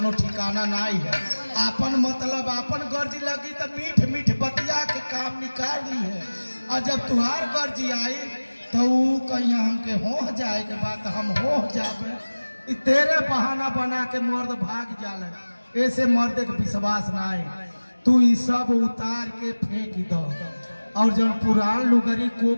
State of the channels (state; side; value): inverted; both; correlation -1.00